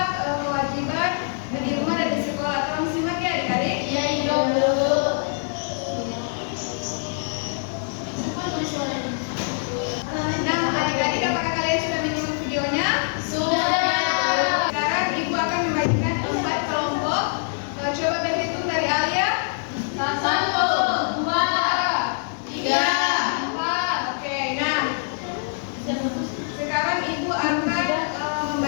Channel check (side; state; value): right; silent; 63 dB below the other